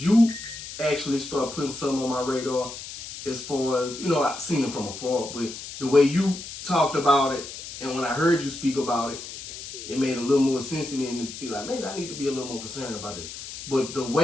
actually start putting something on my radar as far as, I've seen it from afar, but the way you talked about it and when I heard you speak about it, it made a little more sense to me and be like, maybe I need to be a little more concerned about this. But the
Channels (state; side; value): noise; left; hiss, 11 dB below the sound